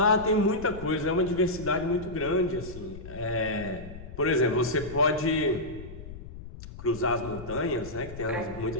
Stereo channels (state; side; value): noise; left; rumble, 13 dB below the sound